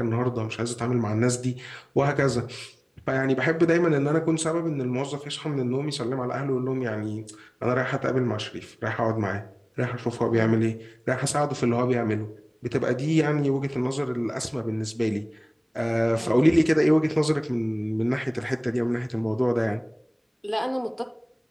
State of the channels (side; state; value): both; identical; correlation 1.00